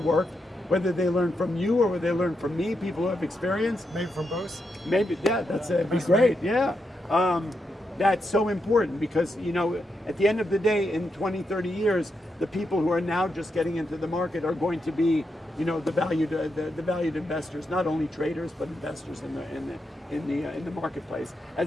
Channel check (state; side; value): normal; both; correlation 0.84